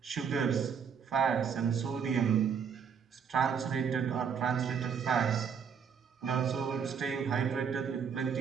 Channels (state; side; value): quieter; left; 7.0 dB